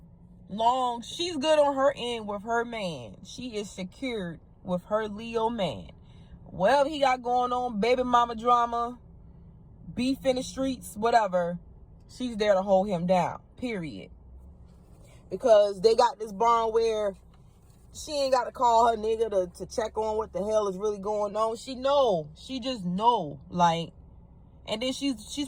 Long she's good on her end with her man, she is secured with her Leo man. Whatever he got going on, baby mama drama, beef in the streets, whatever, she's there to hold him down, period. Because they got this bond where she ain't got to call her nigga to check on what the hell is really going on. She just know, like, and then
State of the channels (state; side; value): identical; both; correlation 1.00